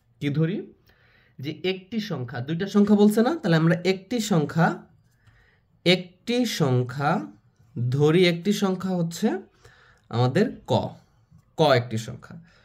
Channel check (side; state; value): both; identical; correlation 1.00